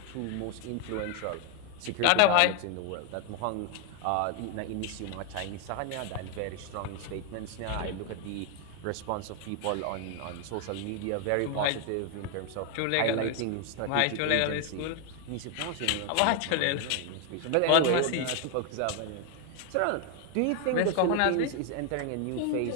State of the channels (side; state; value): both; different; correlation 0.00